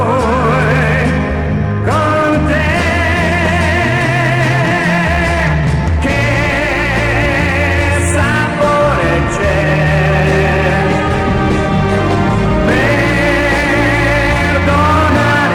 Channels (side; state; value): both; identical; correlation 1.00